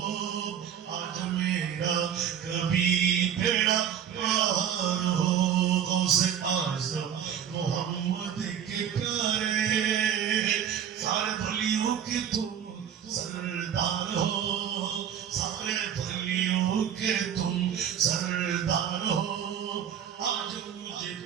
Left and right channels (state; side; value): quieter; left; 9.0 dB